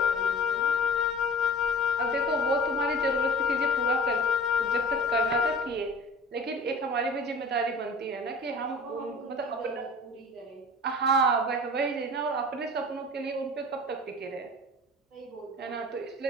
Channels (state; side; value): normal; both; correlation 0.41